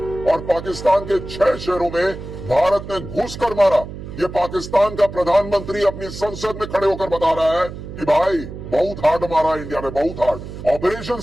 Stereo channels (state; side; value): noise; right; hum, 11 dB below the sound